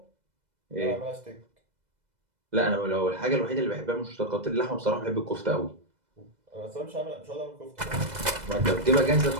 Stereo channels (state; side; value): late; left; 2.0 ms